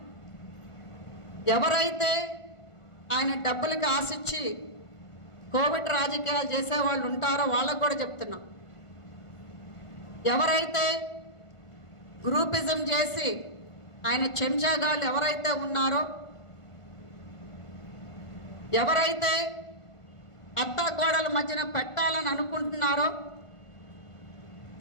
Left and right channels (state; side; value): late; right; 1.5 ms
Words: ఎవరైతే ఆయన డబ్బులకి ఆశించి కోవిడ్ రాజకీయాలు చేసేవాళ్ళు ఉంటారో వాళ్ళకు కూడా చెప్తున్నాం, ఎవరైతే గ్రూపిజం చేసి ఆయన చెంచాగాళ్ళు ఎవరైతే ఉన్నారో, ఎవరైతే అత్తాకోడల మధ్యన పెట్టాలని అనుకుంటున్నారో